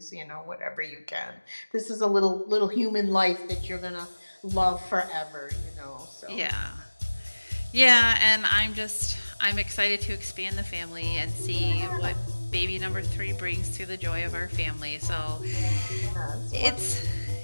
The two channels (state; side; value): inverted; both; correlation -1.00